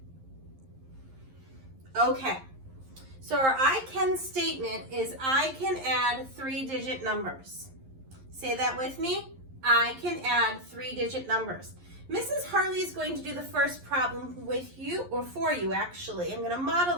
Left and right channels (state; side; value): late; left; 11 ms